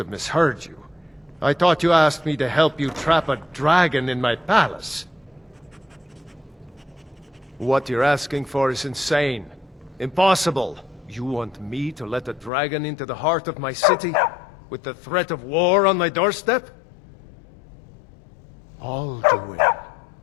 misheard you. I thought you asked me to help you trap a dragon in my palace. What you're asking for is insane. Impossible. You want me to let a dragon into the heart of my city, with the threat of war on my doorstep? Alduin,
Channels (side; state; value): right; drops out; at 12.5 s